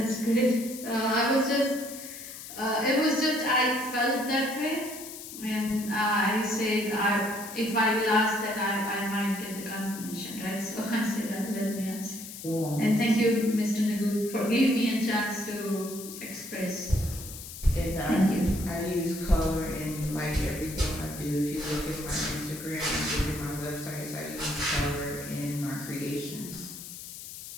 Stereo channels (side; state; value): left; noise; hiss, 12 dB below the sound